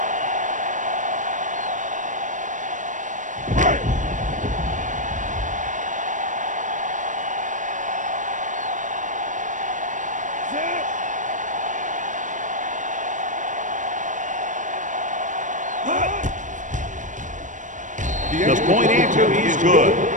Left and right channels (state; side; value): late; left; 0.37 ms